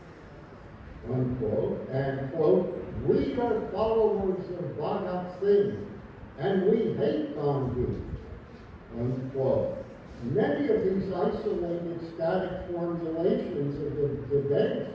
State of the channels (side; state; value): both; identical; correlation 1.00